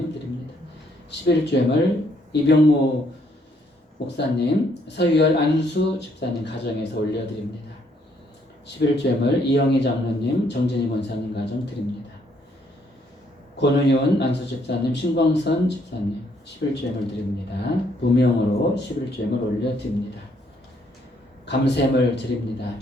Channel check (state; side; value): normal; both; correlation 0.69